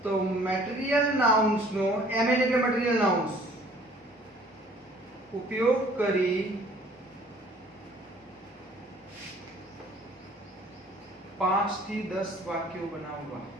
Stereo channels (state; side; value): normal; both; correlation 0.54